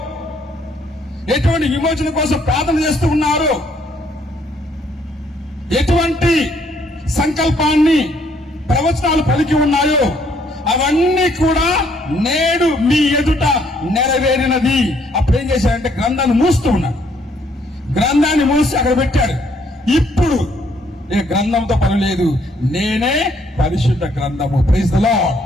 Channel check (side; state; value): both; normal; correlation 0.67